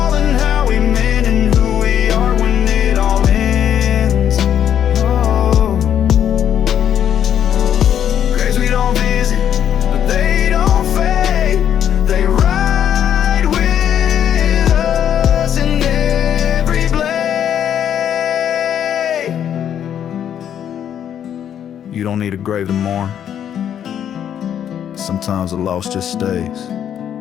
and how we mend and who we are when it all ends. Oh. Graves we don't visit, but they don't fade. They ride with us in every blade. You don't need a grave to mourn. Sometimes the loss just stays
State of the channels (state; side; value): quieter; right; 9.5 dB